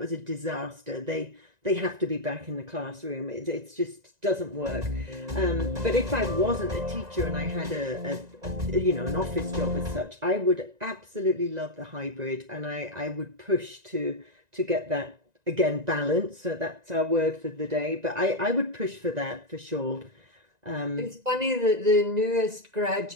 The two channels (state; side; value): late; left; 1.9 ms